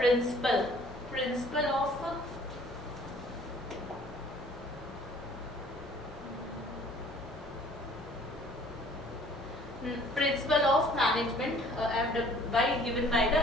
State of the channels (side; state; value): both; normal; correlation 0.55